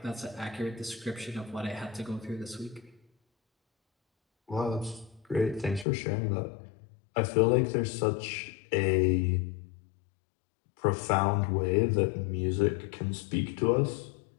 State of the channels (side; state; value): right; drops out; at 5.9 s